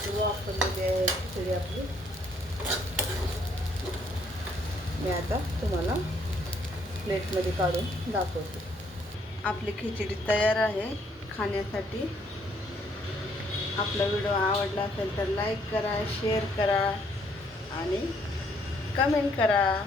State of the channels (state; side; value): normal; both; correlation 0.67